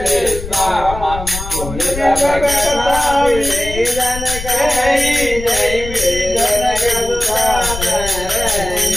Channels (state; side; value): noise; left; rumble, 9 dB below the sound